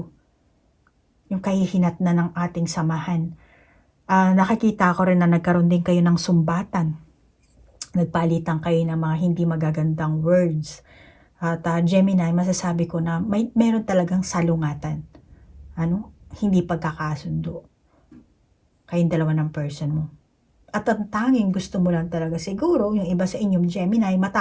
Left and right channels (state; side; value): identical; both; correlation 1.00